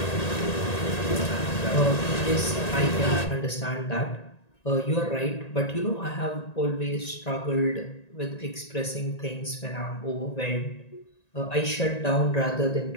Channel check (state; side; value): late; right; 1.9 ms